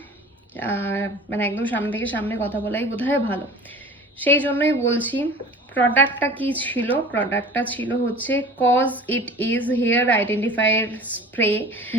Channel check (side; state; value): both; normal; correlation 0.41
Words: মানে একদম সামনে থেকে সামনে কথা বলাই বোধহয় ভালো। সেই জন্যই বলছি, প্রোডাক্টটা কি ছিল। প্রোডাক্টটা ছিল হচ্ছে cause it is hair identifier spray,